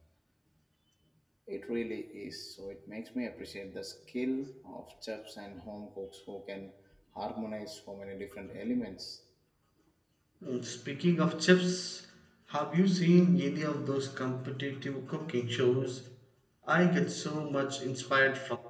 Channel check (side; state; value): both; identical; correlation 1.00